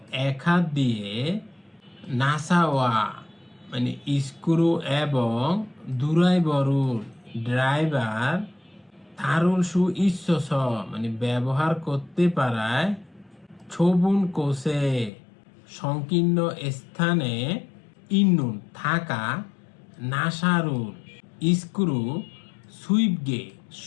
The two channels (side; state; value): right; drops out; at 15.1 s